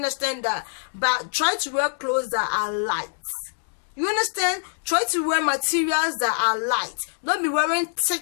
But try to wear clothes that are light. You understand? Try to wear materials that are light. Don't be wearing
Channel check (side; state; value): right; silent; digital silence